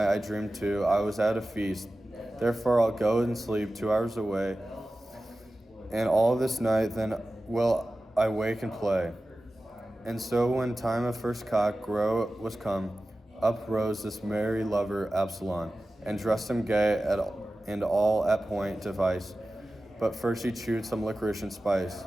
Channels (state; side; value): normal; both; correlation 0.95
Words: I dreamed too. I was at a feast. Therefore I'll go and sleep 2 hours away. And all this night then will I wake and play. And so when time of first cock crow was come, up rose this merry lover Absalom, and dressed him gay and all at point device. But first he chewed some licorice and spice,